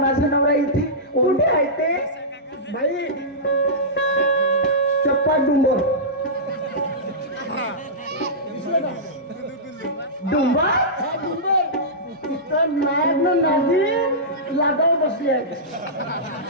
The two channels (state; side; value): normal; both; correlation -0.16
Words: नवरा इथे कुठे आहे ते? बाई, चप्पा डुंबर. डुंबा? हा डुंबर. तिथं नायक नादी लागावर बसली आहे.